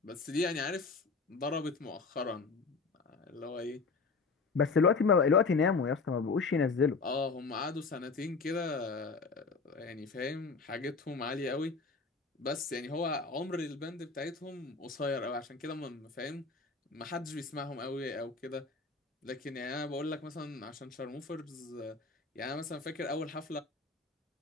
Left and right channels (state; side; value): quieter; right; 4.4 dB